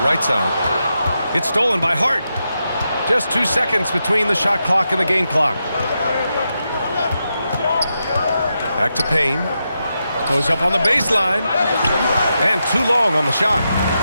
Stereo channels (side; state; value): both; inverted; correlation -0.86